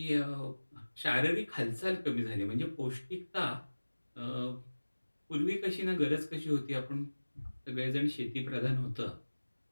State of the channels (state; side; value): inverted; both; correlation -1.00